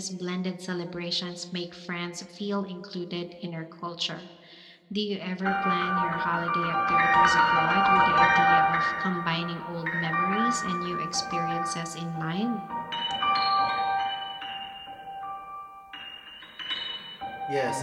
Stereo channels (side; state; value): both; identical; correlation 1.00